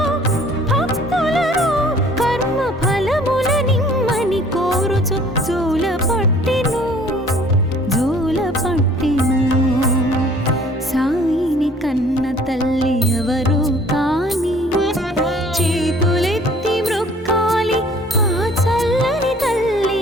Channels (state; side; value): normal; both; correlation 0.54